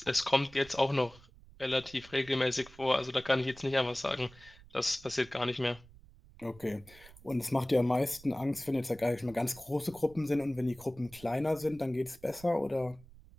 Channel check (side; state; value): right; noise; rumble, 22 dB below the sound